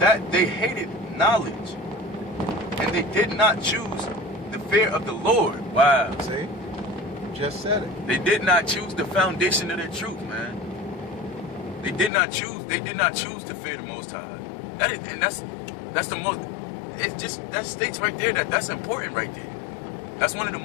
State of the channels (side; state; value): right; drops out; at 12.1 s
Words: they hated knowledge, and they did not choose the fear of the Lord. Wow. See? Just said it. They did not choose the foundation of their truth, man. They did not choose to fear the Most High. That's the most. It's just, that states right there that's important right there. That's one of the